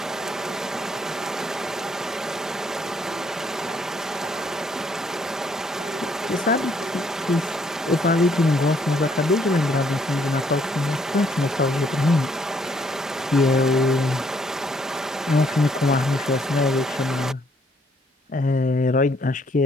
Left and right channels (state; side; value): normal; both; correlation 0.68